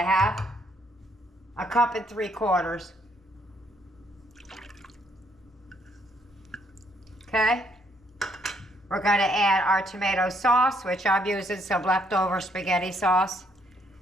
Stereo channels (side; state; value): both; normal; correlation 0.70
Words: 1 3/4 cups. Okay. We're going to add our tomato sauce, which I'm using some leftover spaghetti sauce